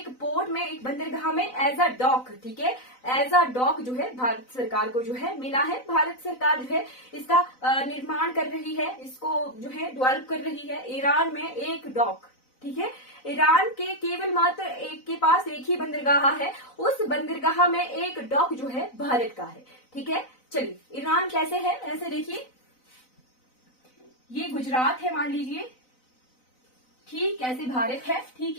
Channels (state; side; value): late; right; 4.0 ms